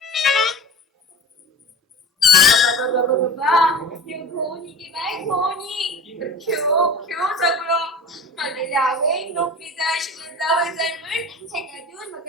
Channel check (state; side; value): normal; both; correlation 0.37